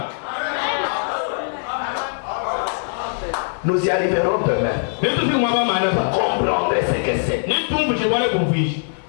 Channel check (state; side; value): silent; right; 57 dB below the other